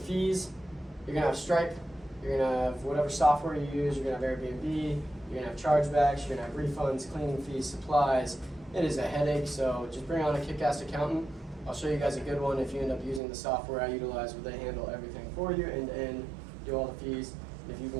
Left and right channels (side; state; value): left; drops out; at 13.2 s